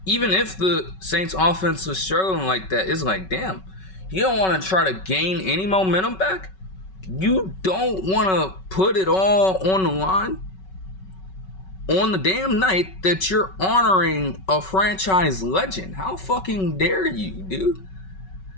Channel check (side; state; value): right; late; 5.3 ms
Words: Even if the Saints offense was struggling like that, it's like, damn, you don't want to try to gain any momentum back? You don't want to put it all on the line on the damn night that you're honoring a franchise legend? How fucking dare you, dude?